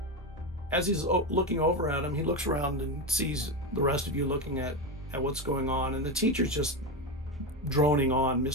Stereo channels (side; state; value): both; normal; correlation 0.15